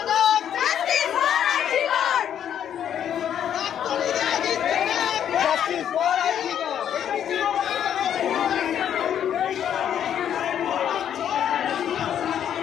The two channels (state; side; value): quieter; right; 9.5 dB